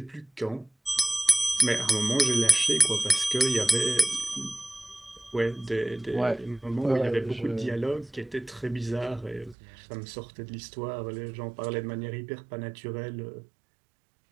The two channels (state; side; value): drops out; left; at 9.6 s